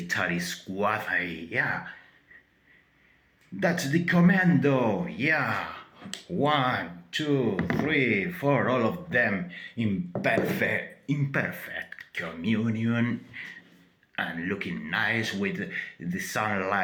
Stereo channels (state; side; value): identical; both; correlation 1.00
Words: squad. Yeah, that's the commando. Yeah, 1, 2, 3, 4, all of them in imperfect communion and looking nice with the